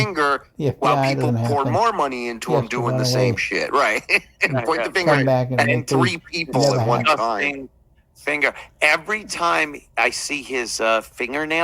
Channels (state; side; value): identical; both; correlation 1.00